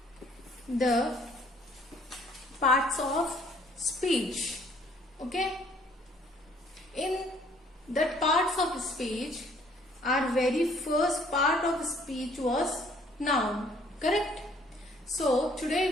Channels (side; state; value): both; normal; correlation 0.61